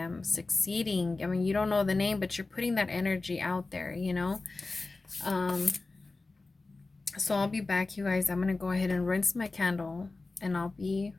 succeeding. I mean, you don't know the name, but you're putting that energy out there, you know. So I'll be back, you guys. I'm gonna go ahead and rinse my candle, and I'll be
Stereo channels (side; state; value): right; quieter; 3.5 dB